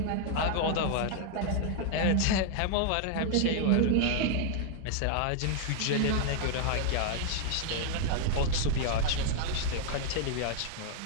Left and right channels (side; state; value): both; different; correlation -0.01